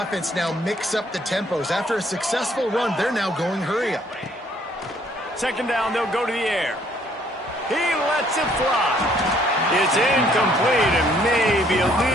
offense now mix up the tempos. After a successful run, they're now going hurry up. 2nd down, they'll go to the air. He lets it fly. It's incomplete and maybe a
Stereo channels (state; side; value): normal; both; correlation 0.64